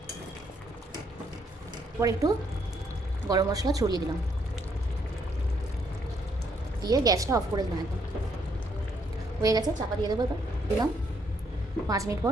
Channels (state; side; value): normal; both; correlation 0.72